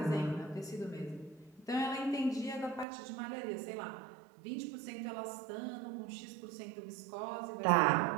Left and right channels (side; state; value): left; drops out; at 2.9 s